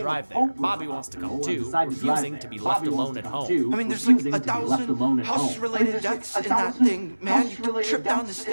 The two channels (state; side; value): inverted; both; correlation -1.00